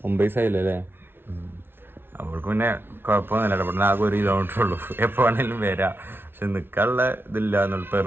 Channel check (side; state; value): left; late; 0.11 ms